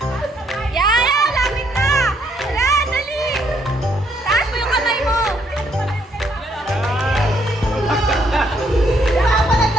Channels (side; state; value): both; normal; correlation 0.71